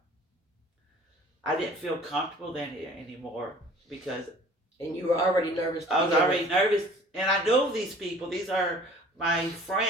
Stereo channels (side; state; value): both; normal; correlation 0.49